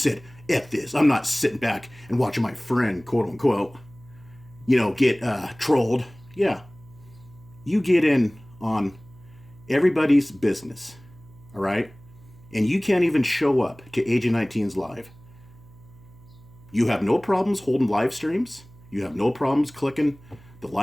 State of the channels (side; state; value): right; noise; hum, 23 dB below the sound